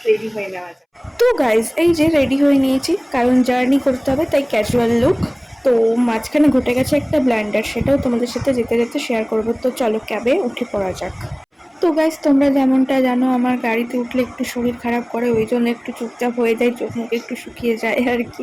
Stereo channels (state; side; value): identical; both; correlation 1.00